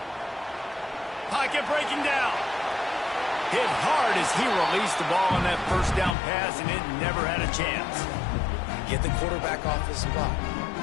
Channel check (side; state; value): right; drops out; at 6.2 s